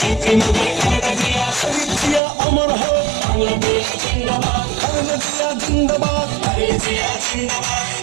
শহীদ দিয়া অমর হোক খালেদা জিন্দাবাদ।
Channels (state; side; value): drops out; left; at 2.2 s